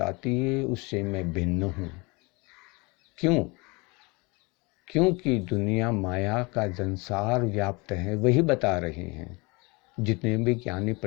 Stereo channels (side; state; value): right; quieter; 27.2 dB